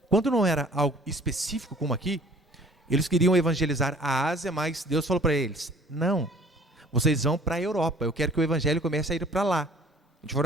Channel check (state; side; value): normal; both; correlation 0.52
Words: quando não era algo específico como aqui, eles queriam evangelizar a Ásia, mas Deus falou para eles: não, vocês vão para a Europa, eu quero que o evangelho comece a ir para lá, de